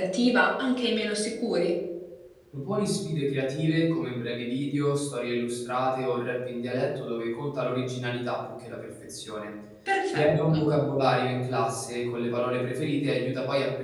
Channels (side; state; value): both; identical; correlation 1.00